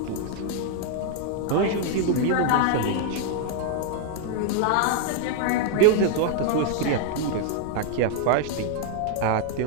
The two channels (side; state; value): both; different; correlation -0.01